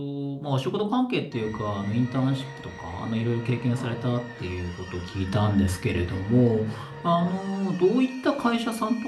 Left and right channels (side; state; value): both; identical; correlation 1.00